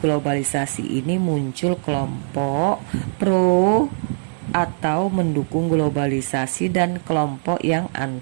ini muncul kelompok pro atau mendukung globalisasi dan kelompok yang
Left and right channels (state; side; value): silent; left; digital silence